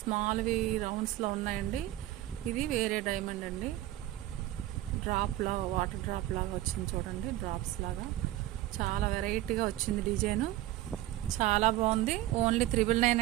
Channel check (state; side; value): quieter; left; 15.1 dB